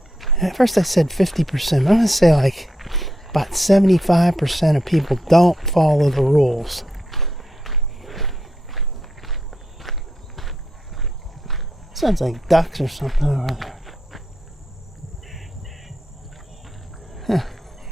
at first I said 50%, I'm going to say like about 75% of people don't follow the rules. Sounds like ducks or something over there. Huh.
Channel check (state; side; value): normal; both; correlation 0.82